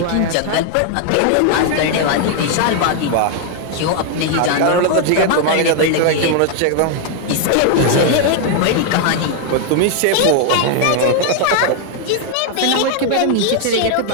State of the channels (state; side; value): different; both; correlation 0.00